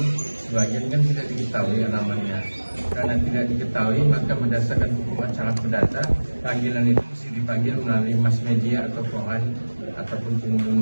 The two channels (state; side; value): inverted; both; correlation -1.00